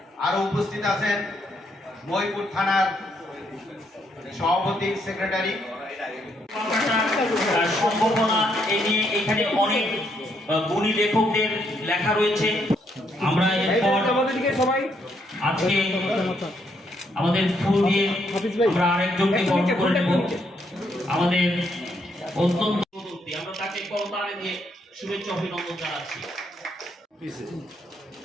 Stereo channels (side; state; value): both; normal; correlation 0.74